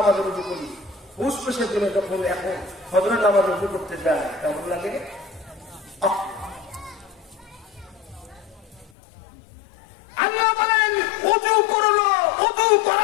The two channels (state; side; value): drops out; right; at 8.9 s